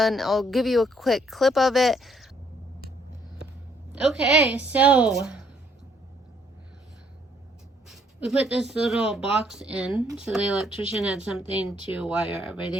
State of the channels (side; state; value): both; normal; correlation 0.67